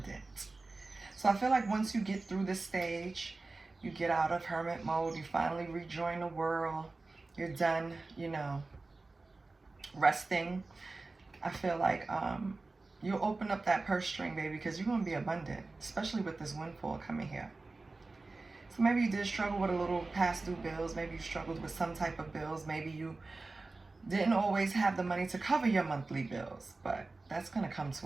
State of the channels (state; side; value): quieter; left; 3.5 dB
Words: So I feel like once you get through this stage, you get out of hermit mode, you finally rejoin the world, you're done, you know, resting. I feel like you'll open up that purse string, baby, because you're going to be abundant, especially with this windfall coming here. So maybe you did struggle with a little past due bills. Maybe you struggled with some type of bills. Maybe you didn't always have the money to cover your monthly bills. But that's going to come